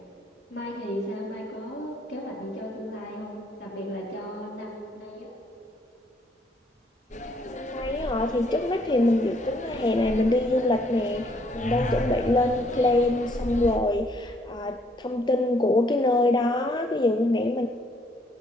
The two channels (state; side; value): normal; both; correlation 0.66